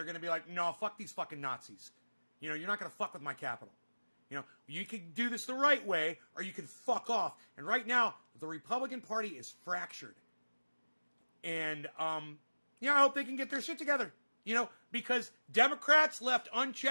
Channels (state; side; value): inverted; both; correlation -1.00